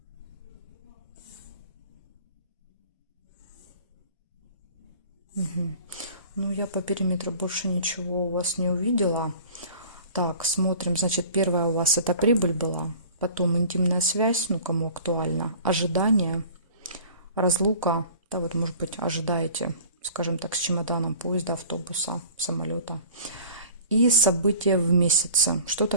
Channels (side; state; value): both; inverted; correlation -0.46